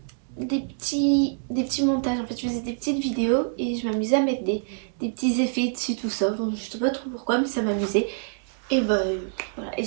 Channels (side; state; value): left; silent; digital silence